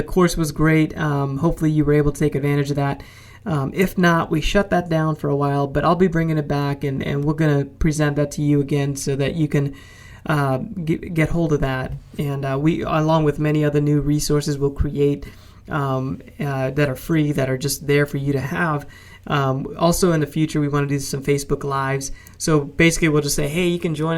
course was great. Hopefully you were able to take advantage of that. If not, we shut that down for a while, but I'll be bringing it back, and we're going to present that to you again so that you can get hold of that. And we, along with many other new resources, will create that are free, that are just there for you to have. Also in the future, we want to do some Facebook Lives. So basically, we'll just say, hey, you can join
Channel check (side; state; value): both; identical; correlation 1.00